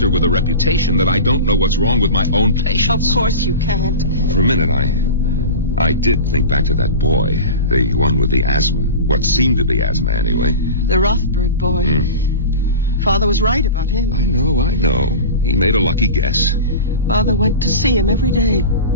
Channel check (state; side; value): inverted; both; correlation -0.30